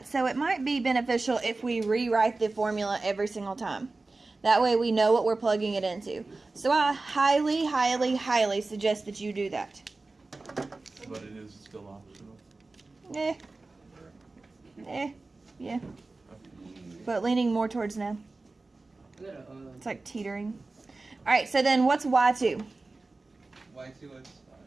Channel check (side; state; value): left; quieter; 3.4 dB